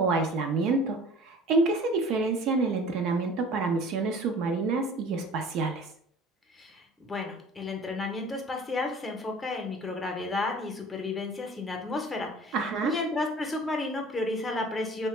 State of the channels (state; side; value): normal; both; correlation 0.45